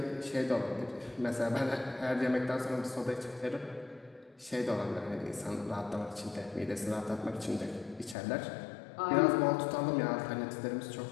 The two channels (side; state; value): right; drops out; at 8.2 s